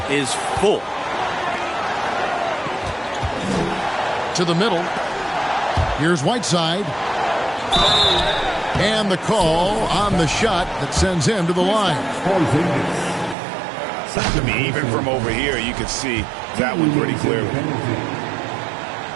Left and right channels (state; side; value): drops out; left; at 13.4 s